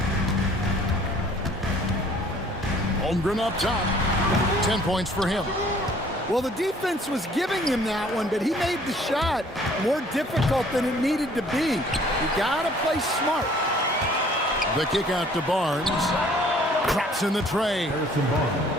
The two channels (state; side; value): normal; both; correlation 0.56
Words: Holmgren up top. 10 points for him. Well, the defense was giving him that one, but he made the shot more difficult than it needed to be. You gotta play smart. The kick out to Barnes. Drops in the tray.